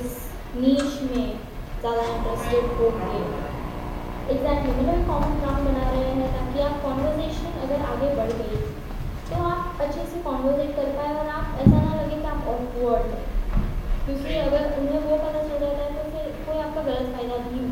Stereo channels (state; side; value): identical; both; correlation 1.00